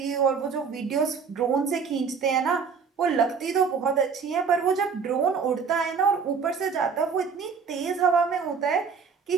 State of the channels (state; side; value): quieter; left; 5.8 dB